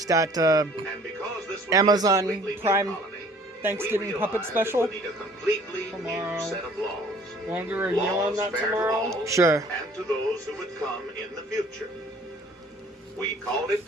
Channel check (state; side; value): normal; both; correlation 0.54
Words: that And because this would be a Amazon completely new Prime colony, Thanksgiving we puppet realized special? it would need a completely Tomorrow. new set of laws. Want to do a review on Laws that fair to tomorrow? all Sure. and to those who would come in the future. We called it